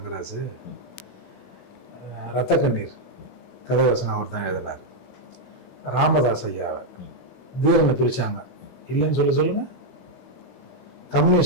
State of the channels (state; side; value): late; right; 16 ms